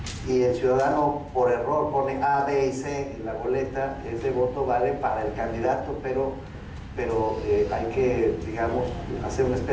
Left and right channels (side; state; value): both; identical; correlation 1.00